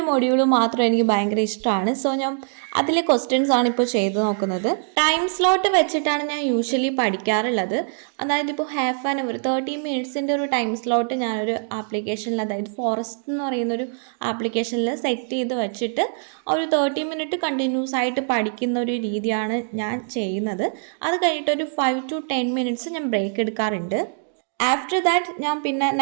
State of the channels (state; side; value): silent; left; digital silence